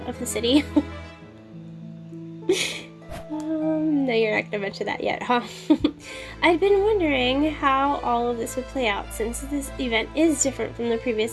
of the city? No, you're not gonna mention that yet, huh? I'd been wondering how all of this would play out since this event is different from the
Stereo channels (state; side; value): identical; both; correlation 1.00